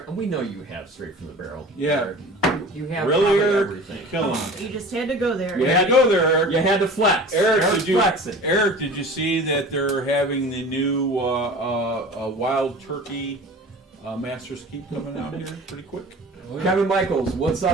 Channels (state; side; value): normal; both; correlation 0.40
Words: We know you have straight from the barrel. Yeah. Eric. You have Really, probably Eric? everything. Kill him. You just had to go there. You had to go there, Eric. You had to flex. Eric, Eric's flexing. Eric, did you see that they're having the new wild turkey Master's Keep coming out here pretty quick? Oh, yeah. Kevin Michaels, what's